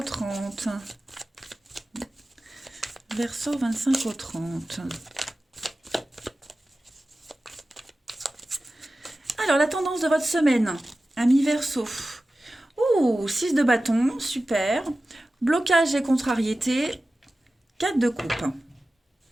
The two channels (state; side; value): normal; both; correlation 0.95